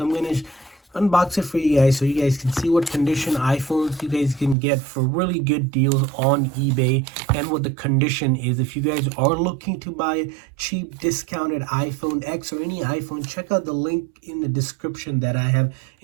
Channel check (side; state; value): left; drops out; at 4.5 s